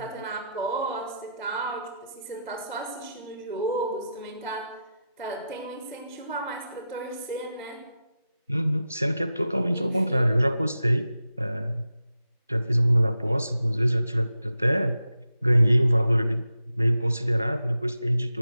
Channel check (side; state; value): both; inverted; correlation -0.88